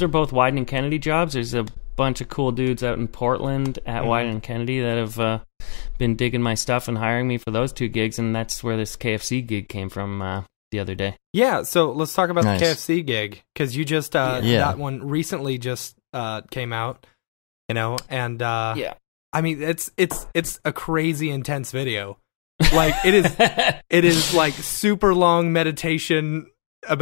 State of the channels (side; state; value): right; silent; digital silence